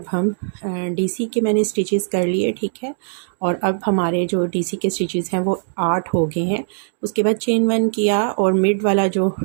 हम डीसी के मैंने स्टिचेस कर लिए, ठीक है। और अब हमारे जो डीसी के स्टिचेस हैं वो 8 हो गए हैं। उसके बाद चेन 1 किया और मिड वाला जो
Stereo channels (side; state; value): left; silent; digital silence